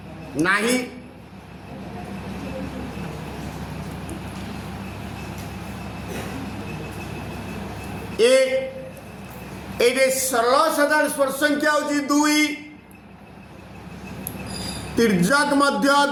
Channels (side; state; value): both; identical; correlation 1.00